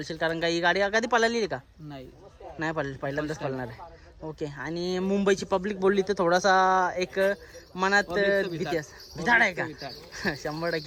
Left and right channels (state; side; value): identical; both; correlation 1.00